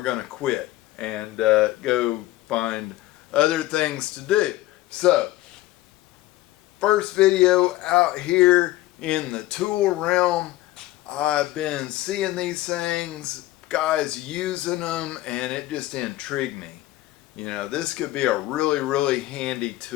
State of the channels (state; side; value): quieter; right; 16.6 dB